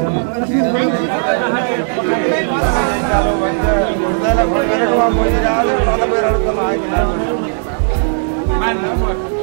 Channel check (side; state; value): left; silent; digital silence